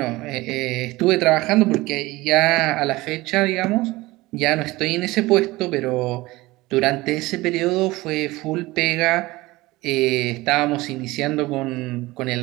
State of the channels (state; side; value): quieter; left; 19.9 dB